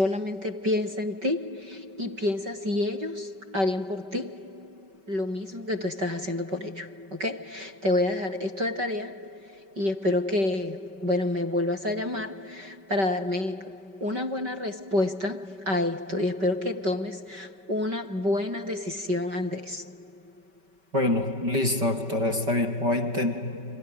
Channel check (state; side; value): late; left; 5.2 ms